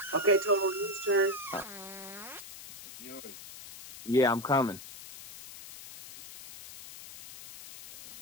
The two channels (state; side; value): noise; left; hiss, 15 dB below the sound